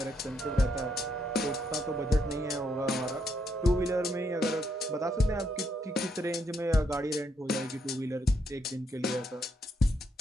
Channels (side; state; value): both; normal; correlation 0.76